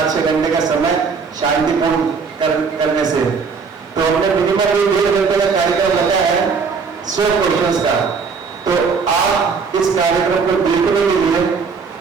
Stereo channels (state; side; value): quieter; left; 5.3 dB